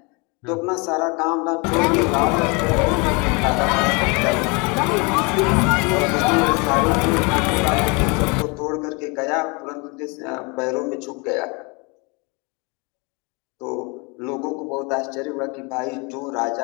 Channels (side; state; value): right; quieter; 30.0 dB